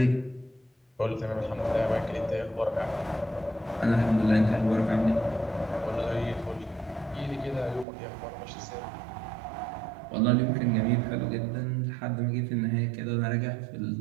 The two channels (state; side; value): drops out; left; at 7.9 s